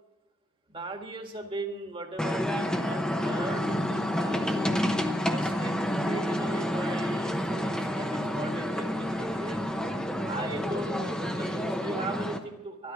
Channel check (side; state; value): both; normal; correlation 0.80